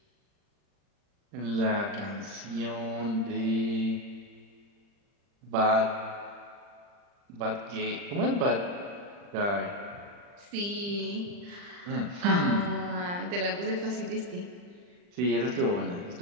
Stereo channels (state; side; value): late; left; 40 ms